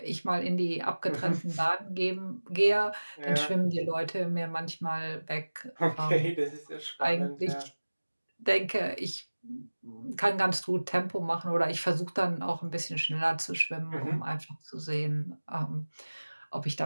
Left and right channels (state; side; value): inverted; both; correlation -1.00